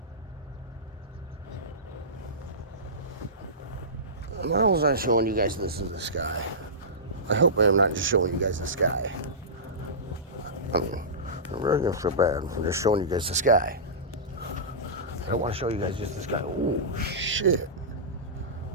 Why was I showing you guys this in the sky? I hope I am not just showing you guys the sky. I mean, I'm really gonna feel bad for just showing you guys the sky. I don't want to show you guys just the sky. Oh, shit.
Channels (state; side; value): normal; both; correlation -0.19